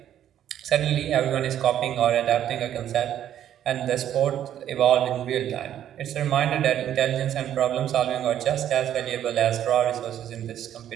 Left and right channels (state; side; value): quieter; left; 10.8 dB